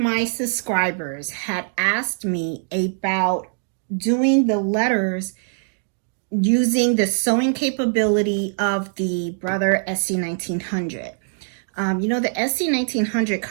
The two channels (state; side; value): silent; left; 61 dB below the other